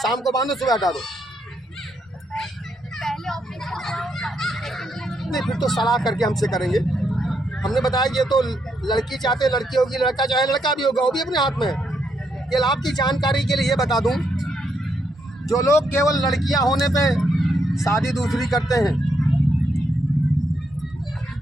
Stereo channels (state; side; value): normal; both; correlation 0.77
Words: शाम को बांधो, सुबह हटा दो। नहीं, फिर तो सलाह करके हमसे करेंगे। हमने बताया ये तो लड़की चाहते लड़की होगी, लड़का चाहे लड़का भी होगा, वो भी अपने हाथ में है। ये आपकी जानकारी के लिए बता दूं, जो लोग केवल लड़कियां होने पे शादी दूसरी करते हैं,